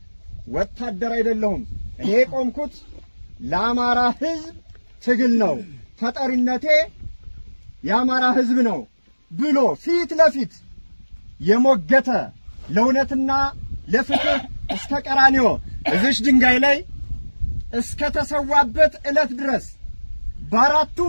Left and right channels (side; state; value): both; inverted; correlation -1.00